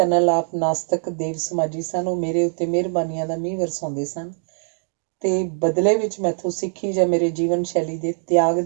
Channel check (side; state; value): left; silent; digital silence